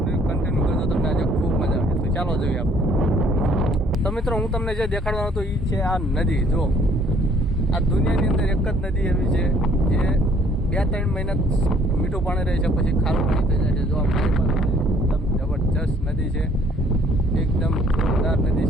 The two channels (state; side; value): normal; both; correlation 0.61